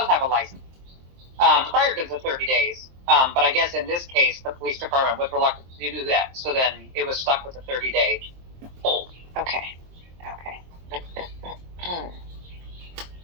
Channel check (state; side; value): late; left; 23 ms